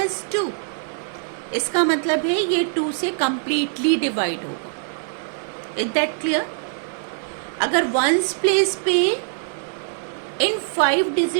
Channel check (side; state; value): left; silent; digital silence